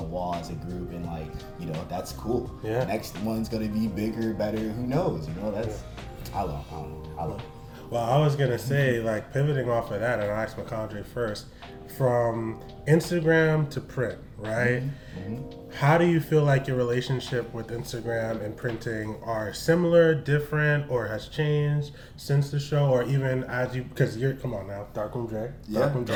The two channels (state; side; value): identical; both; correlation 1.00